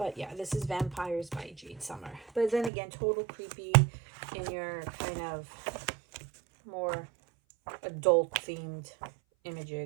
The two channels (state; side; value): drops out; left; at 2.7 s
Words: yeah, this is Vampires by Jade Summer. But then again, total creepy in your kind of more adult themed